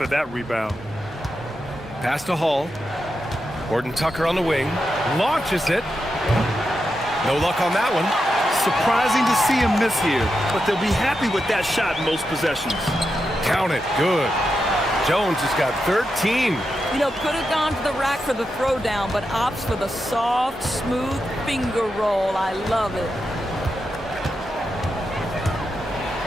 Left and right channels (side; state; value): both; normal; correlation 0.87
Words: that rebound. Pass to Hall. Horton-Tucker on the wing. Launches it. No luck on that one. Surprising to see him miss here, but they'll be happy with that shot in most possessions. Count it. Good. Jones has got 13. You know, could have gone to the rack for the throwdown, but opts for the soft, smooth finger roll. I love it.